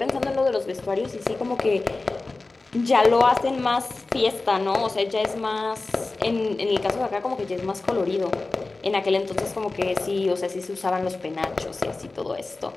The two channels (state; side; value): quieter; right; 3.4 dB